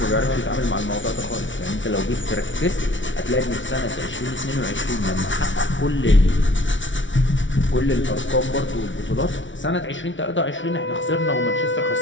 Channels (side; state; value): right; late; 0.56 ms